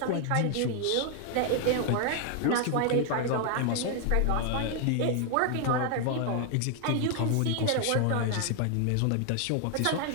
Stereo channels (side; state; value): both; different; correlation 0.00